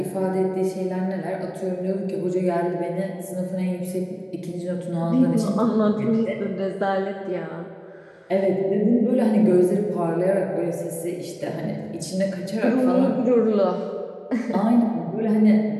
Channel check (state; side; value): identical; both; correlation 1.00